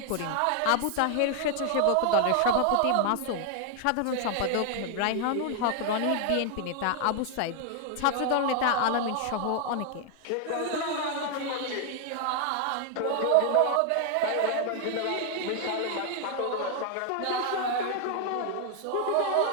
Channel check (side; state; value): both; different; correlation 0.00